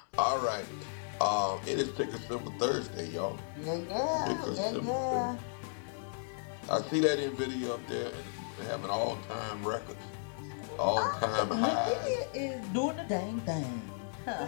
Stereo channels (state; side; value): silent; right; digital silence